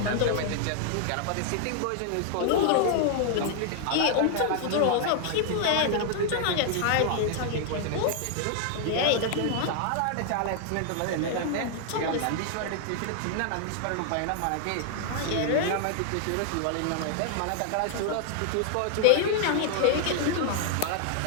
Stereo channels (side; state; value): both; different; correlation 0.00